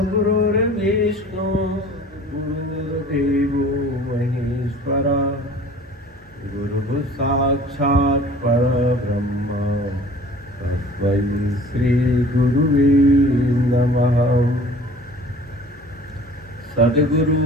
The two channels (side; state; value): both; normal; correlation 0.47